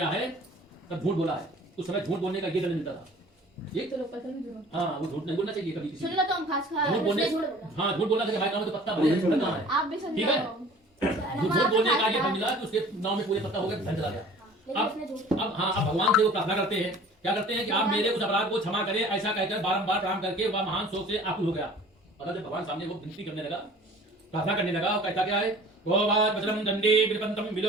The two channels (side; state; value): both; normal; correlation 0.47